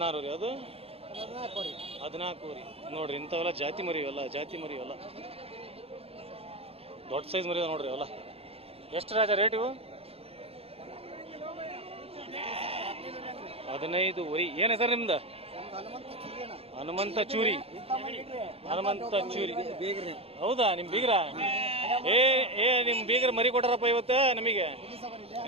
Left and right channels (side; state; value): left; late; 0.28 ms